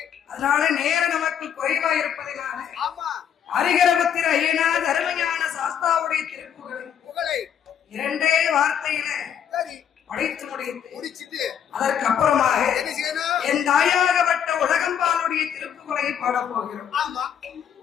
அதனால நேரம் நமக்கு குறைவா இருப்பதனால ஹரிஹரபுத்திர ஐயனார் அருமையான சாஸ்தாவுடைய திருப்புகளை இரண்டே வார்த்தையில படித்து முடிச்சுட்டு அதற்கு அப்புறமாக என் தாயாகப்பட்ட உலகம்பாளுடைய திருப்புகளை பாடப் போகிறோம்.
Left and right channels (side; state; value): right; quieter; 8.7 dB